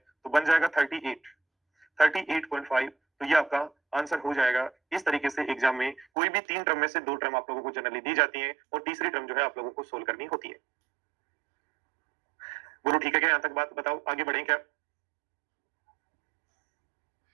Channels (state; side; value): drops out; left; at 6.1 s